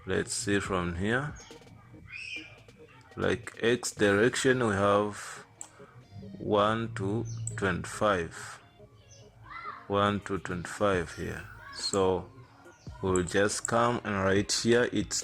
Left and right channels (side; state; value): both; identical; correlation 1.00